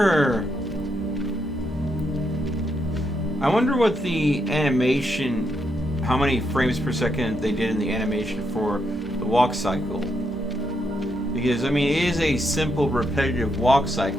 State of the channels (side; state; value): both; normal; correlation 0.80